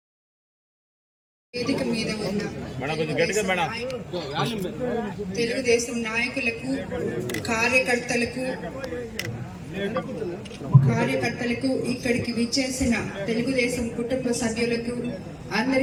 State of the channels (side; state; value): both; identical; correlation 1.00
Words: వేదిక మీద ఉన్న తెలుగుదేశం నాయకులకు, కార్యకర్తలకు ఇక్కడికి విచ్చేసిన తెలుగుదేశం కుటుంబ సభ్యులకు